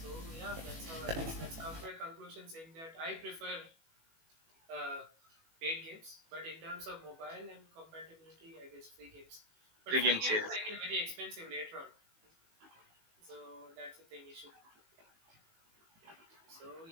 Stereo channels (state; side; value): late; left; 18 ms